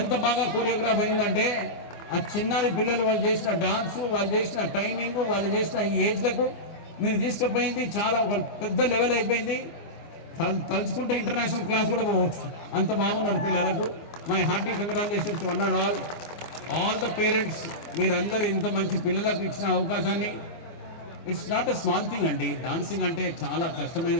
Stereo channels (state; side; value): late; right; 24 ms